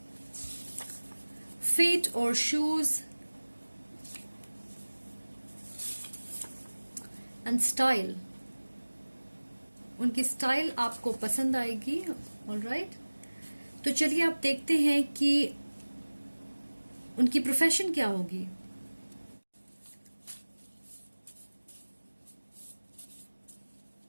फीट और शूज एंड स्टाइल, उनकी स्टाइल आपको पसंद आएगी। ऑलराइट, तो चलिए आप देखते हैं कि उनकी प्रोफेशन क्या होगी।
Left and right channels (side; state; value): both; inverted; correlation -1.00